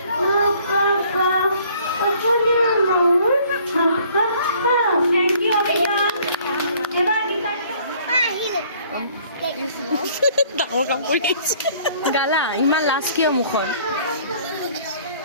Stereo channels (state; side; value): inverted; both; correlation -0.58